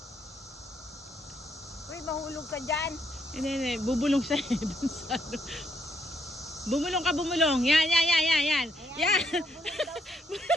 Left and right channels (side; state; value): both; normal; correlation 0.74